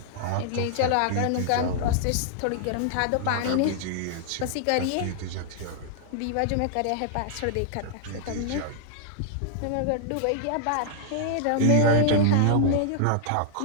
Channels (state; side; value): different; both; correlation -0.01